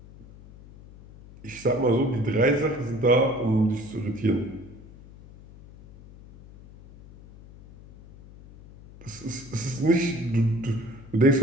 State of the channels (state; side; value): noise; left; hum, 20 dB below the sound